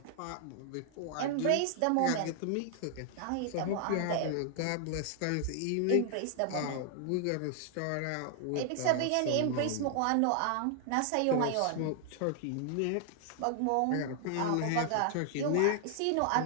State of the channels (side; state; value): both; different; correlation 0.00